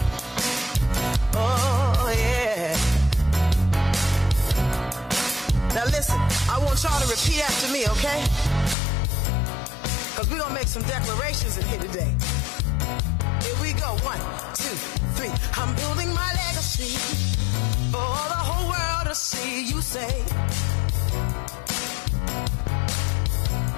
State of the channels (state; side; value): drops out; right; at 8.8 s